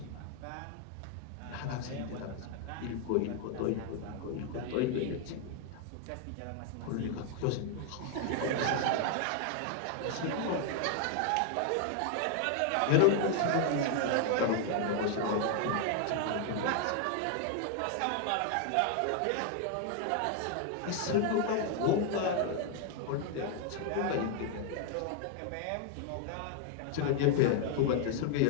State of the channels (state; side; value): different; both; correlation 0.00